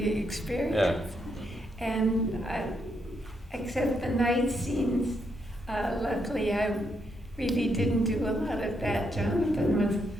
experience. Yeah. And except the night scenes, luckily I really didn't do a lot of that. Jonathan was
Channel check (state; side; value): normal; both; correlation 0.78